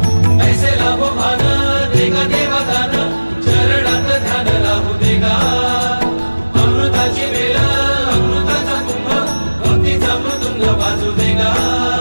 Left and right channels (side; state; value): both; inverted; correlation -1.00